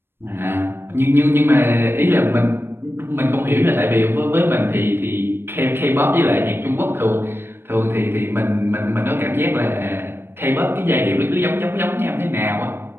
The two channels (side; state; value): left; late; 0.11 ms